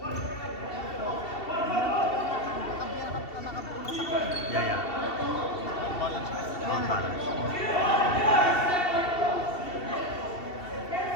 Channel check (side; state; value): right; late; 2.7 ms